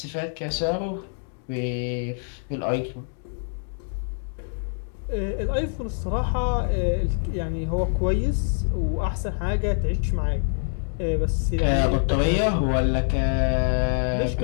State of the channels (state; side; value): silent; right; digital silence